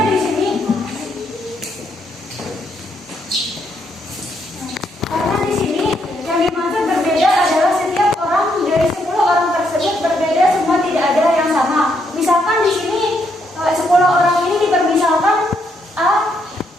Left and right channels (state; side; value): normal; both; correlation 0.75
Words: di sini yang dimaksud berbeda adalah setiap orang dari 10 orang tersebut berbeda, semua tidak ada yang sama. Misalkan di sini 10 orang ini dipermisalkan A,